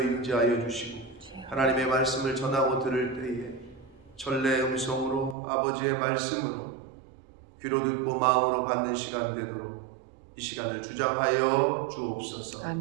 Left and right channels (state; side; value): drops out; left; at 5.4 s